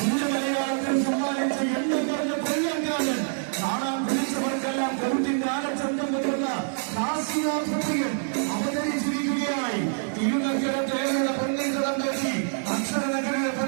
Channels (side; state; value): left; silent; 61 dB below the other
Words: മലയാളത്തിൽ സമ്മാനിച്ച എണ്ണം പറഞ്ഞ കൊല്ലംകാരൻ കാണാൻ വിളിച്ചവർക്കെല്ലാം കരുത്തിന്റെ ആനച്ചന്തം മുതിർന്ന കാശിനാഥപ്രിയൻ അവതരിച്ചിരിക്കുകയായി. തിരുനക്കര തേവരുടെ പൊന്നിൻകടം കെട്ടി അക്ഷരനഗരിലെ